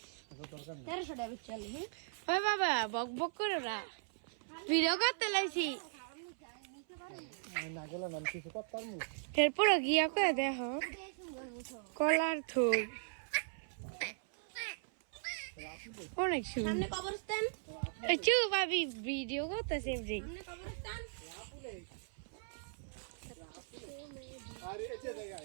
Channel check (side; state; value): left; silent; 52 dB below the other